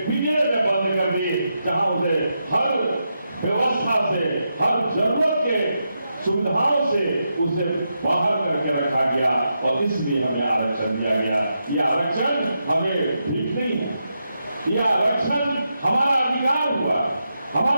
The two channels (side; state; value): both; inverted; correlation -0.85